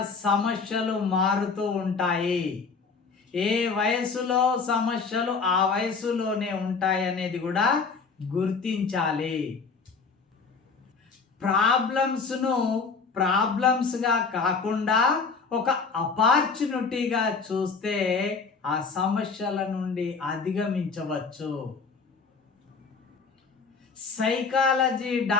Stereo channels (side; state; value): right; quieter; 4.9 dB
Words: సమస్యలు మారుతూ ఉంటాయి. ఏ వయసులో సమస్యలు ఆ వయసులోనే ఉంటాయి అనేది కూడా గుర్తించాలి. ప్రాబ్లమ్స్ను ప్రాబ్లమ్స్గా కాకుండా ఒక ఆపర్చునిటీగా చూస్తే ఆ సమస్యల నుండి అధిగమించవచ్చు. సైకాలజీ